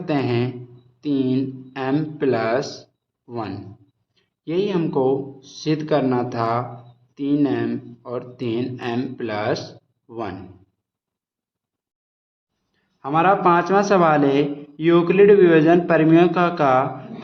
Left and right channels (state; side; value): identical; both; correlation 1.00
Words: हैं 3m+1। यही हमको सिद्ध करना था, 3m और 3m+1। हमारा 5वां सवाल है, यूक्लिड विभाजन प्रमेय का